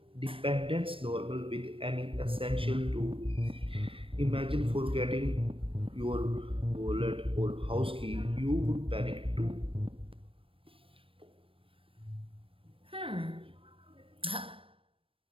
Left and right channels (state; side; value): late; left; 0.26 ms